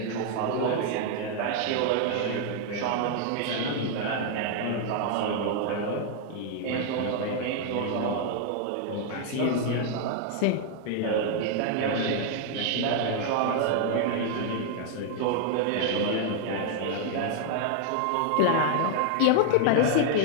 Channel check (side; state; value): both; different; correlation 0.00